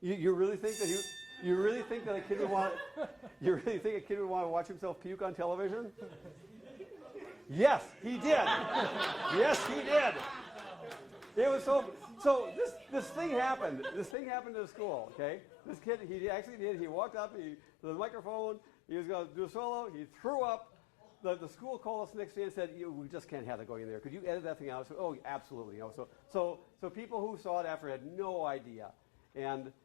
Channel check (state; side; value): drops out; right; at 14.2 s